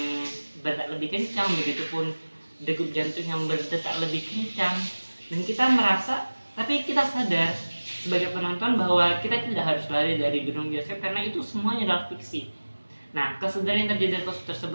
berdetak lebih kencang, begitupun degup jantung yang berdetak lebih kencang, dan kita merasa, tapi kita sadar sebagai penonton bahwa kita tidak harus lari dari gedung bioskop karena itu semuanya adalah fiksi. Nah, kesadaran yang terjadi dari kasus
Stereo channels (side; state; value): both; inverted; correlation -1.00